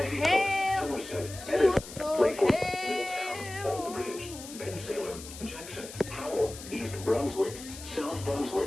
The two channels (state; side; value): noise; left; hiss, 13 dB below the sound